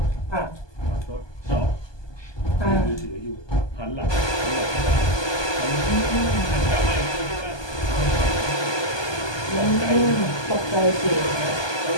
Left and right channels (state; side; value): late; right; 1.2 ms